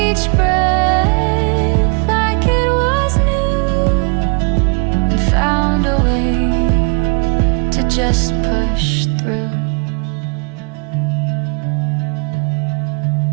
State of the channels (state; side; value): quieter; left; 34.7 dB